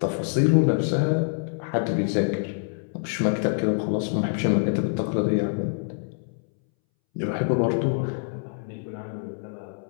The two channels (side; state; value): right; silent; 61 dB below the other